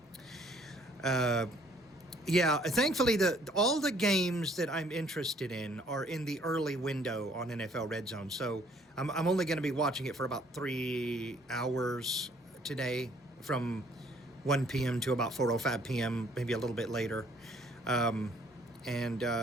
Yeah, thankfully all the games that I'm interested in are in the early window on NFL Red Zone. So I'm only going to be watching it for about 3 hours today, from 1 p.m. to about 4:05 p.m., maybe a little bit later.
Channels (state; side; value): normal; both; correlation 0.61